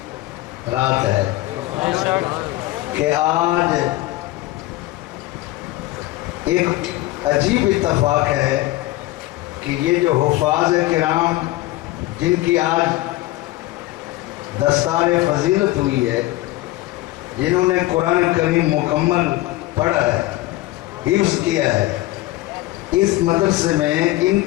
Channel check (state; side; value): quieter; right; 17.6 dB